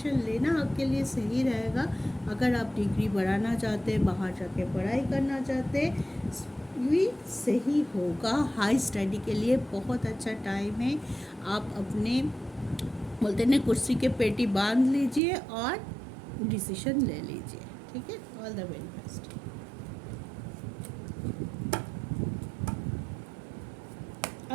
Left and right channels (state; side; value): drops out; left; at 15.2 s